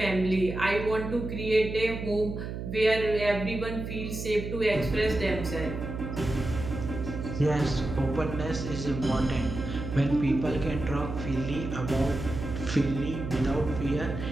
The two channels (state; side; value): noise; right; hum, 6 dB below the sound